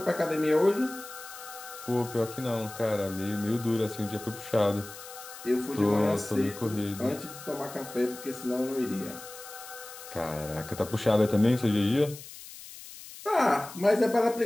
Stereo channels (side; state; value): left; noise; hiss, 15 dB below the sound